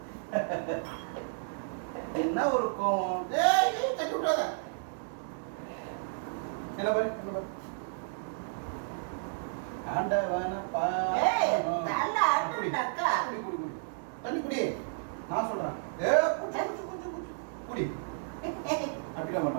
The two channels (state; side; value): silent; left; digital silence